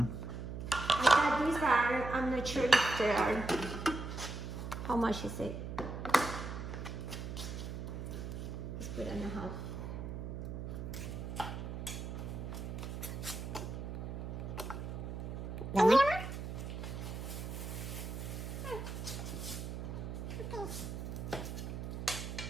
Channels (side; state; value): right; noise; hum, 6 dB below the sound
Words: I got these are, I'm not sure if they are, how much is it? Let's put it in a half. One more?